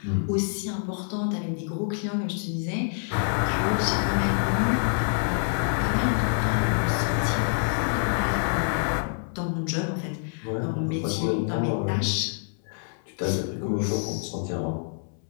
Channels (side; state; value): right; silent; 60 dB below the other